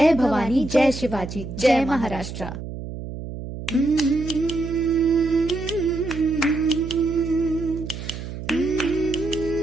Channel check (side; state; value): right; noise; hum, 9 dB below the sound